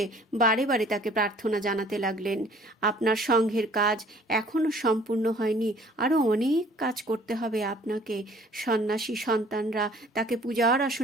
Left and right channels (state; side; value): normal; both; correlation 0.55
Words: বারে বারে তাকে প্রার্থনা জানাতে লাগলেন, আপনার সংঘের কাজ এখনো সম্পূর্ণ হয়নি, আরও অনেক কাজ করতে হবে আপনাকে। সন্ন্যাসী সন্তানরা তাকে পূজার